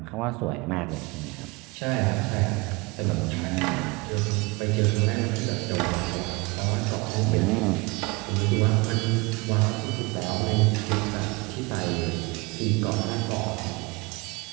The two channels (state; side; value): quieter; left; 26.2 dB